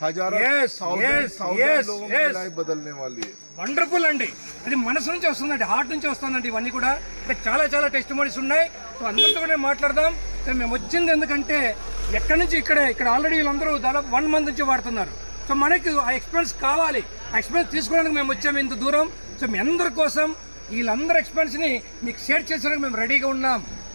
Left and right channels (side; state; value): both; inverted; correlation -1.00